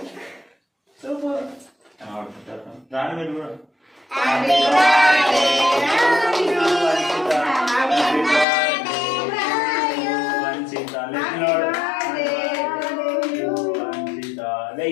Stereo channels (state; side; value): drops out; right; at 8.5 s